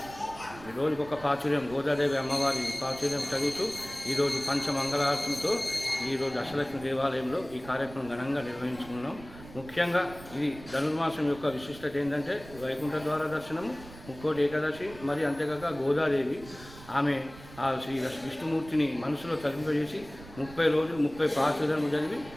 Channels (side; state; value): right; noise; rumble, 17 dB below the sound